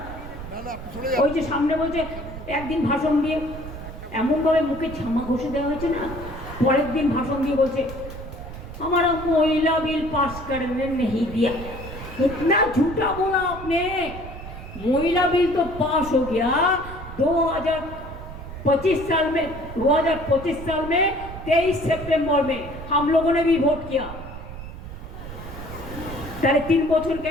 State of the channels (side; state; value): right; noise; rumble, 11 dB below the sound